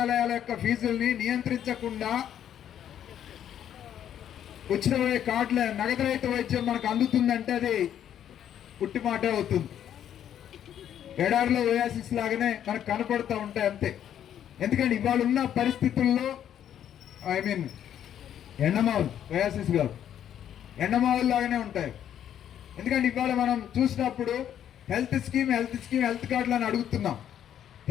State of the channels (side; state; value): right; quieter; 10.1 dB